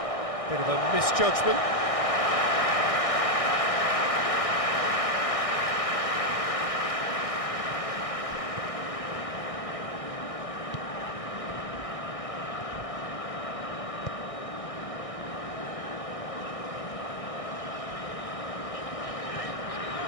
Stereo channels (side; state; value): right; late; 1.6 ms